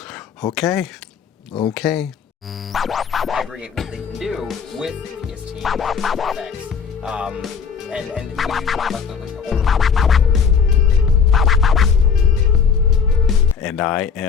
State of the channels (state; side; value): quieter; right; 6.4 dB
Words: Okay. Aggregate what they can do with PST effects. And we talk about And I